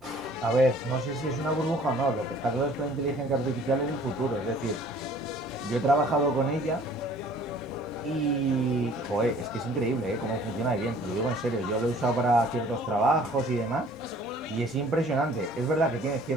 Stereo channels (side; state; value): both; normal; correlation 0.53